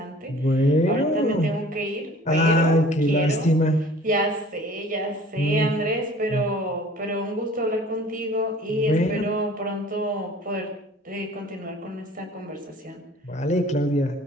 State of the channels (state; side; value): normal; both; correlation 0.49